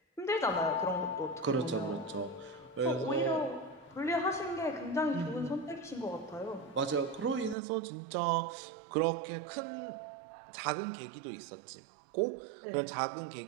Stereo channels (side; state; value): left; drops out; at 7.6 s